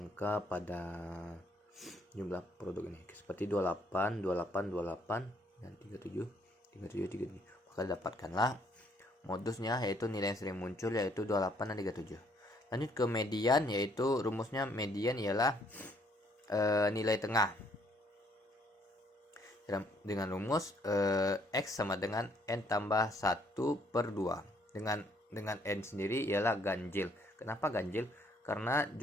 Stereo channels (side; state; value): both; normal; correlation 0.66